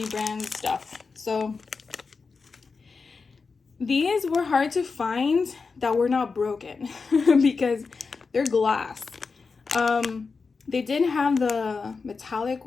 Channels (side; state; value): right; quieter; 4.7 dB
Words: brand stuff. So these were hard to find that were not broken because they're glass. They didn't have the metallic